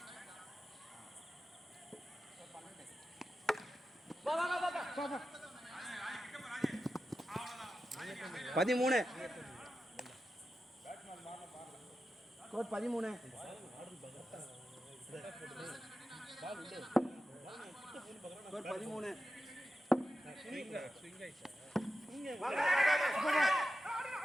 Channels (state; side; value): normal; both; correlation 0.91